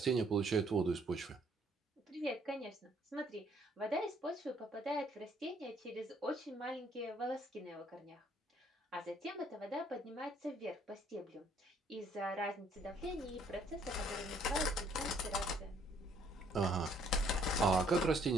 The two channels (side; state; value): both; normal; correlation 0.64